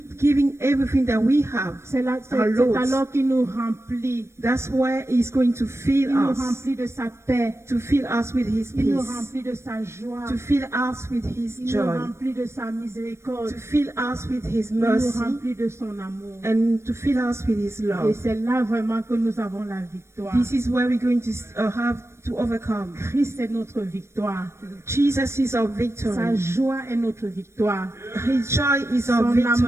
giving everything that we have, c'est our Lord, alors qu'il nous remplit. that's where He's going to fill Il nous us, remplit de sa paix. to fill us with His Il nous peace, remplit de sa joie. to fill us with His Il nous joy, remplit de sa miséricorde. to fill us with His Il nous mercy, remplit de son amour. and to fill us with His Et love. c'est là vraiment que nous avons la victoire. This is where we're going to have to overcome. Christ est notre victoire. Jesus is our Sa victory. joie est notre victoire. His joy is our Son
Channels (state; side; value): late; left; 0.13 ms